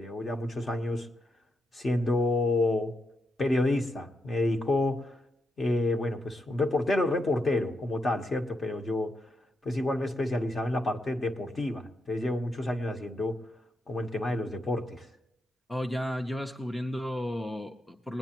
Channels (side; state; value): both; normal; correlation 0.83